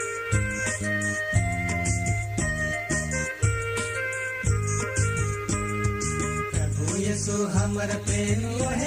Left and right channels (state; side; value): identical; both; correlation 1.00